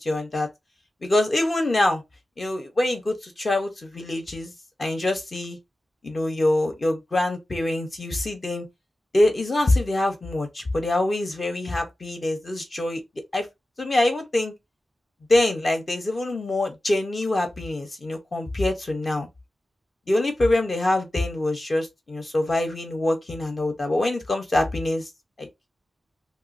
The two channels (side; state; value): both; normal; correlation 0.95